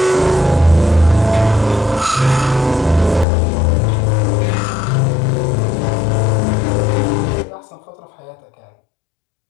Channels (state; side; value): drops out; right; at 3.2 s